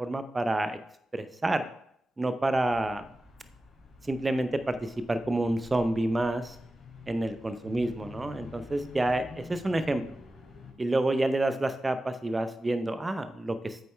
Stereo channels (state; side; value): normal; both; correlation 0.94